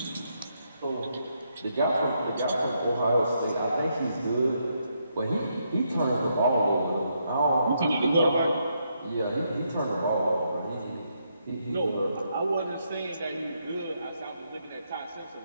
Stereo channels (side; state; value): both; inverted; correlation -0.78